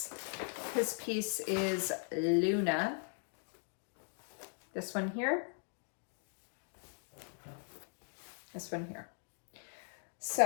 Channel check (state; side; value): silent; right; 52 dB below the other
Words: his piece is Luna. This one here. This one here.